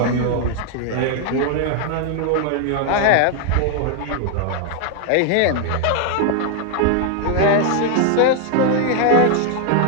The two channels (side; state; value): both; different; correlation 0.00